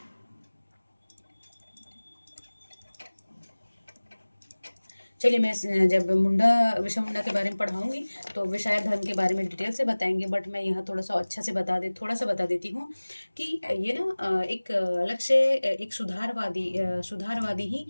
चलिए मैं जब मुंडा विषय मुंडा के बारे में पढ़ाऊंगी तो विषय धर्म के बारे में डिटेल से बताएंगे, बट मैं यहाँ थोड़ा सा अच्छा से थोड़ा सा बता देती हूँ कि ये ना एक अलग से एक सुधारवादी ही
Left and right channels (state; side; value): inverted; both; correlation -1.00